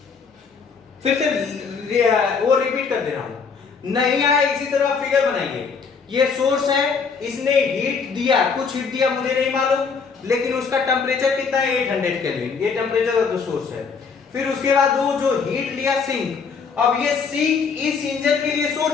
फिर से वो रिपीट कर दे रहा हूं। नहीं आया इसी तरह फिगर बनाइए। ये सोर्स है, इसने हीट दिया, कुछ हीट दिया मुझे नहीं मालूम, लेकिन उसका टेम्परेचर कितना है 800 केल्विन, ये टेम्परेचर ऑफ द सोर्स है। फिर उसके बाद वो जो हीट लिया सिंक, अब ये सिंक इस इंजन के लिए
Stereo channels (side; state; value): right; quieter; 5.5 dB